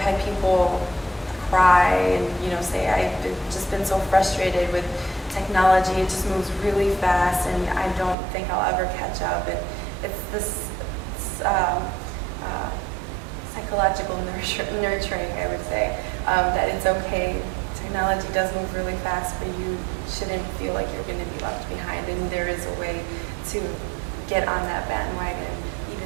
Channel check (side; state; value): left; drops out; at 8.2 s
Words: had people cry and say I've just been so frustrated with technology. It just moves really fast, and I don't think I'll ever catch up. And it's this psychological nurturing, I would say, that it's okay. Technology does move really fast, but you shouldn't feel like you're going to be left behind, and there is a way to get on that bandwagon,